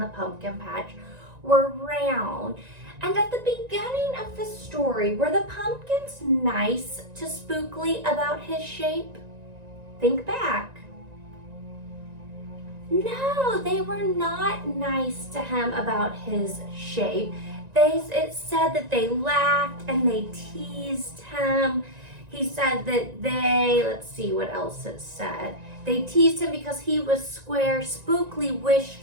pumpkin patch were round. And at the beginning of the story, were the pumpkins nice to Spookley about his shape? Think back. No, they were not nice to him about his shape. It said that they laughed and they teased him. He said that let's see what else it said. They teased him because he was square. Spookley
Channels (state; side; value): late; left; 1.9 ms